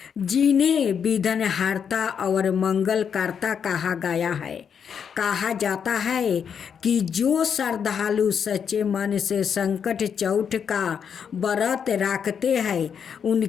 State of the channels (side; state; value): right; quieter; 7.3 dB